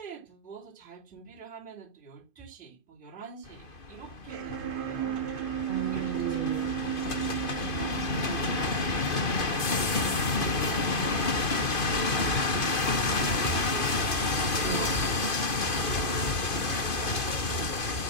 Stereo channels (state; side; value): late; right; 2.5 ms